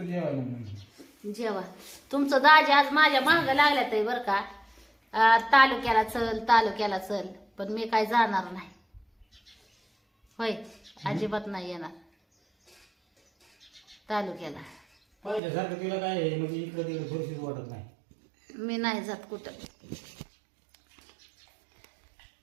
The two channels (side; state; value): left; drops out; at 15.4 s